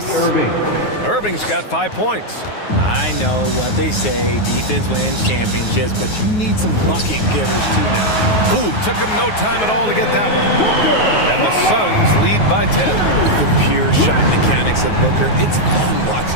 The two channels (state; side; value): late; right; 9.4 ms